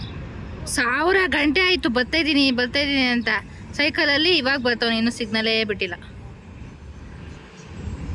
1000 ಗಂಟೆ ಆಯಿತು ಬರ್ತಾಯಿದ್ದೀನಿ ಅಂತ. ಸೈಕಲಲ್ಲಿ ಇವಾಗ ಬರ್ತಾವ, ಇನ್ನೂ ಸಿಗ್ನಲೇ ಬಿಟ್ಟಿಲ್ಲ.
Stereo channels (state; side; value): identical; both; correlation 1.00